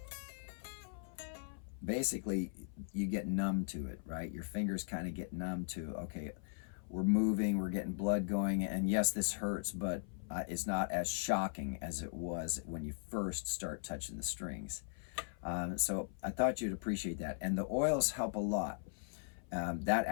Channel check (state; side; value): silent; right; 52 dB below the other